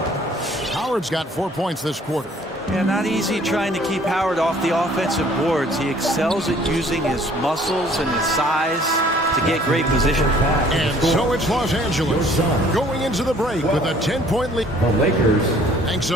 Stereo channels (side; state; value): both; normal; correlation 0.57